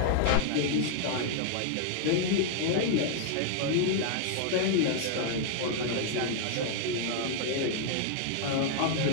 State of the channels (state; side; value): different; both; correlation -0.01